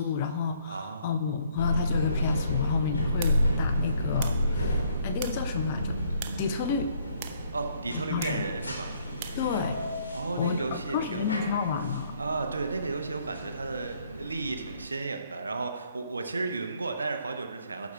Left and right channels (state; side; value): inverted; both; correlation -0.66